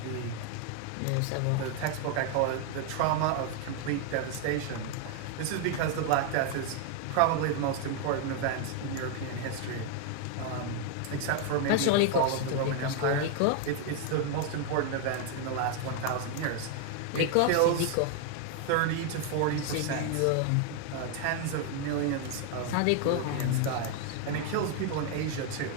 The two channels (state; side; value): different; both; correlation 0.01